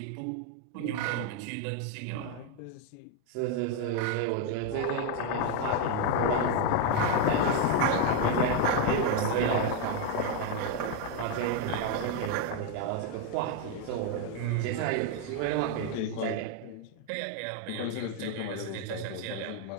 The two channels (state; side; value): different; both; correlation 0.01